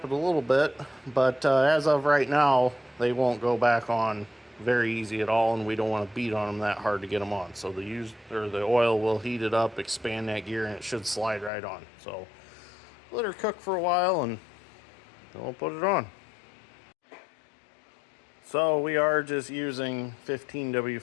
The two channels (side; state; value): right; drops out; at 11.5 s